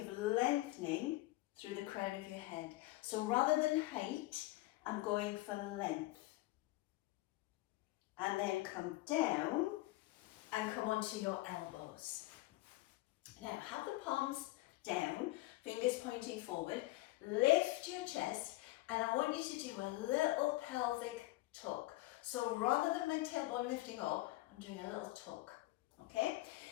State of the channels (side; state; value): right; quieter; 19.1 dB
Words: lengthening through the crown of your head? So rather than height, I'm going for length. And then come down and come onto your elbows. Now have the palms down, fingers pointing forward, lift your chest, and I want you to do a little pelvic tuck. So rather than my tailbone lifting up, I'm doing a little tuck, okay?